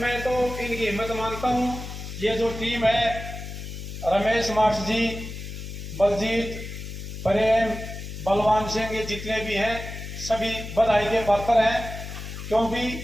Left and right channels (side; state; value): left; noise; hum, 9 dB below the sound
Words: तो इनकी हिम्मत मानता हूँ। ये जो टीम है, रमेश मार्च जी, बलजीत, प्रेम, बलवान सिंह, ये जितने भी हैं सभी बधाई के पात्र हैं, क्योंकि